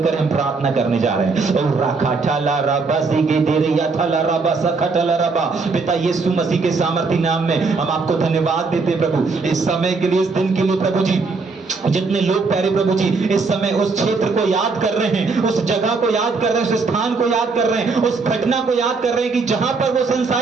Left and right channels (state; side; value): quieter; left; 4.3 dB